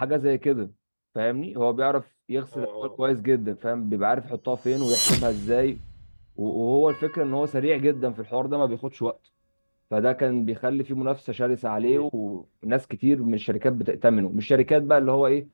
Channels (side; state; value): both; inverted; correlation -1.00